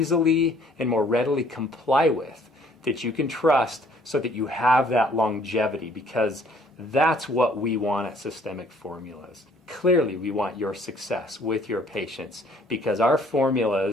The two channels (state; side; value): normal; both; correlation 0.60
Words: and more readily comply with, that you can trust so that you have that longevity, because that's what we want at Systemic Formulas. Clearly, we want your success with your patients because our